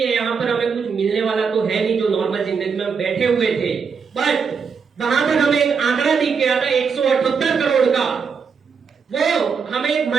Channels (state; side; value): quieter; left; 5.9 dB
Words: यहाँ पर हमें कुछ मिलने वाला तो है नहीं जो नॉर्मल जिंदगी में हम बैठे हुए थे। बट वहां पर हमें एक आंकड़ा दिख गया था 178 करोड़ का, वो हमें एक